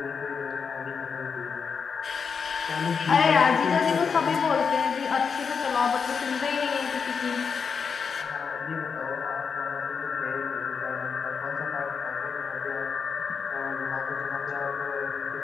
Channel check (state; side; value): quieter; right; 5.9 dB